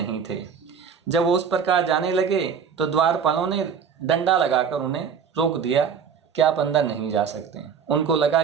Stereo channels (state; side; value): quieter; left; 6.9 dB